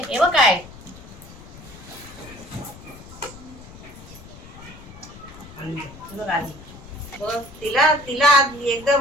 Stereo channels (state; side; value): noise; left; rumble, 17 dB below the sound